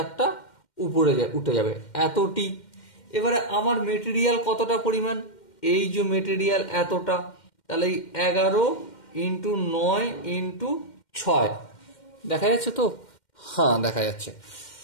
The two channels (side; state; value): right; late; 2.1 ms